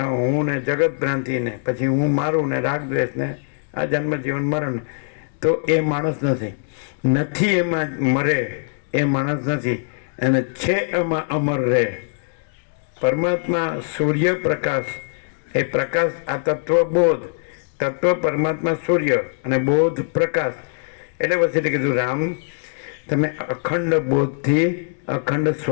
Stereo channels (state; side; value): silent; right; 64 dB below the other